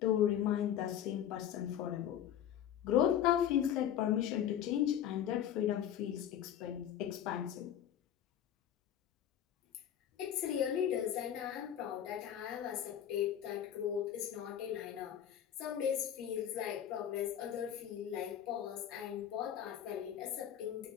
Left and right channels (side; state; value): right; quieter; 10.1 dB